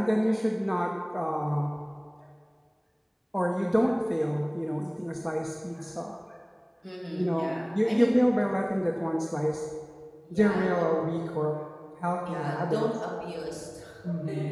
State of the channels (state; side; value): identical; both; correlation 1.00